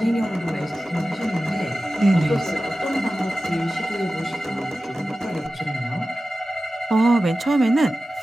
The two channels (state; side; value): normal; both; correlation 0.95